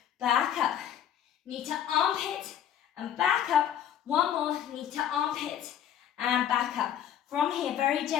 Back up. Knee to armpit, and back up. 1 more. Knee to armpit, and back up. From here, very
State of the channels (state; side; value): quieter; right; 10.0 dB